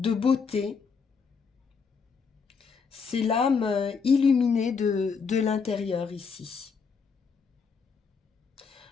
beauté. C'est l'âme illuminée de l'intérieur ici.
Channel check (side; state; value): right; quieter; 5.5 dB